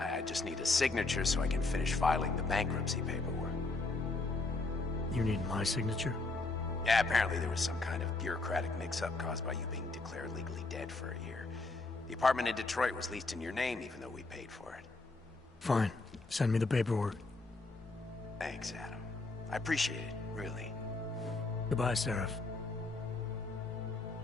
just need a signature so I can finish filing the bankruptcy paperwork. You need my signature? Yeah, apparently there was some kind of bureaucratic mix-up caused by you being declared legally dead for a year. The apartment in Detroit was leased in your name even though we paid for it. Fine. Send me the paperwork. Thanks, Adam. I appreciate it, really. Goodbye, Seraph.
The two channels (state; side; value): quieter; right; 3.4 dB